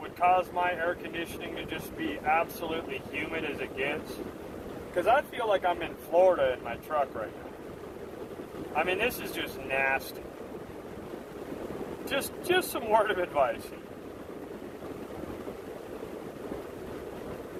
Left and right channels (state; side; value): identical; both; correlation 1.00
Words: cause my air conditioning to just be absolutely humid as it gets? Because I feel like I'm in Florida in my truck right now. I mean, this is just nasty. Just some word of advice.